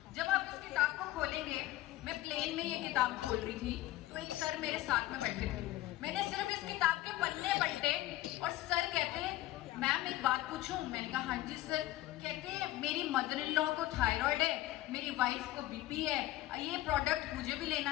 जब आप इस किताब को खोलेंगे, मैं प्लेन में ये किताब खोल रही थी तो एक सर मेरे साथ में बैठे थे। मैंने सिर्फ इस किताब के पन्ने पलटे और सर कहते, मैम एक बात पूछूं? मैंने कहा हाँ जी सर। कहते, मेरी मदर इन लॉ को थायराइड है, मेरी वाइफ को बीपी है, ये प्रोडक्ट मुझे भी लेना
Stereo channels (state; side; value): quieter; right; 16.0 dB